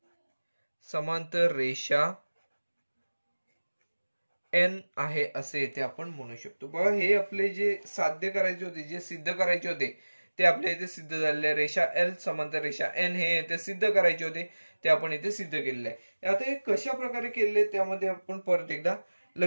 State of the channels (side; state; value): both; inverted; correlation -1.00